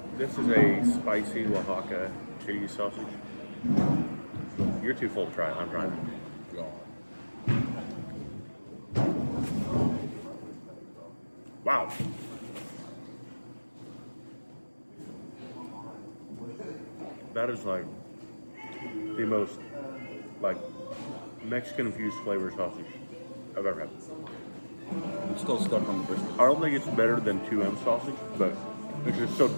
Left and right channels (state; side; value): inverted; both; correlation -1.00